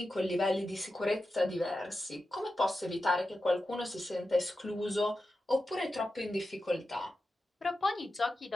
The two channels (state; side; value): normal; both; correlation 0.91